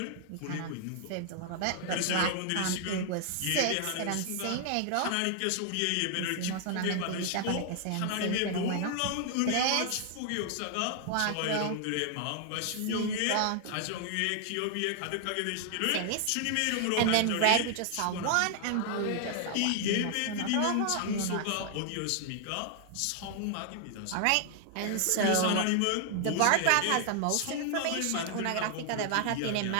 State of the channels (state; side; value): different; both; correlation 0.00